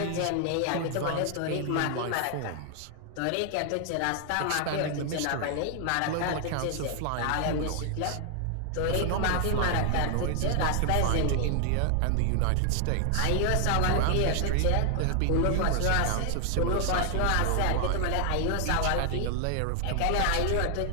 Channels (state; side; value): different; both; correlation 0.00